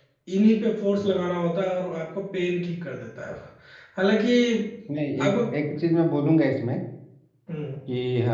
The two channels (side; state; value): both; identical; correlation 1.00